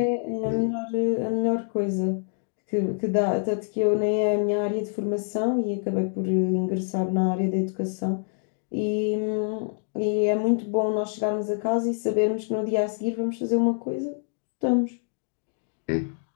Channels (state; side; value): silent; right; digital silence